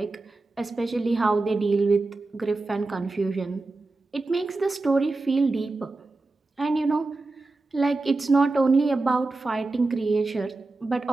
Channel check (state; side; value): quieter; left; 3.3 dB